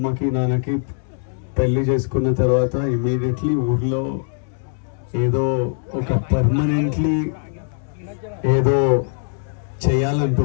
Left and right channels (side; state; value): right; silent; 65 dB below the other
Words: నాన్నకి పెళ్లి చేసుకున్న తర్వాత ఇమీడియట్లీ ఊర్లో ఏదో ఒక పర్మనెంట్లీ ఏదో